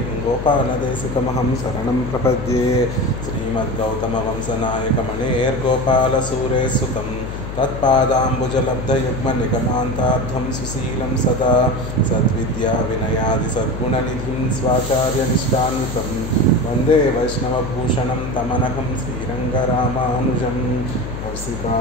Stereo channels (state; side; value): noise; left; hum, 7 dB below the sound